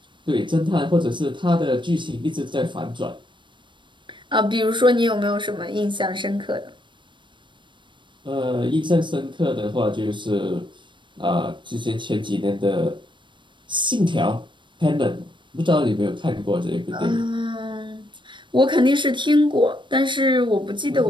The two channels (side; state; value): left; late; 0.23 ms